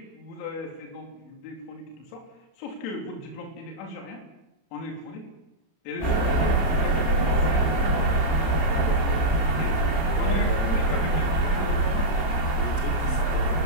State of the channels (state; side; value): late; right; 31 ms